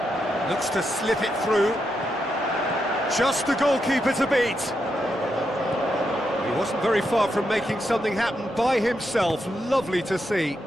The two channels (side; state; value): both; normal; correlation 0.83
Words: Looks to slip it through. Just the goalkeeper to beat. He wasn't very far from making something happen by himself. Lovely to see.